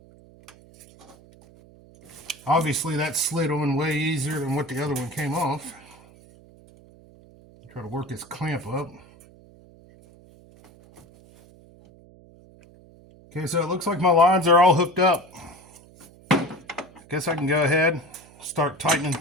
Obviously that slid on way easier than what the other one came off. Try to work this clamp up. Okay, so it looks like my lines are all hooked up. Guess I can go ahead and start tightening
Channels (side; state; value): right; noise; hum, 24 dB below the sound